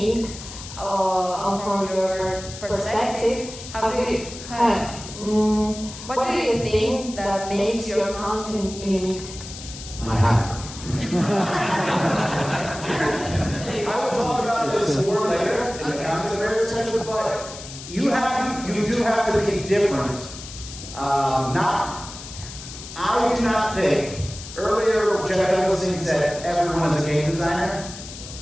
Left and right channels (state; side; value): noise; left; hiss, 13 dB below the sound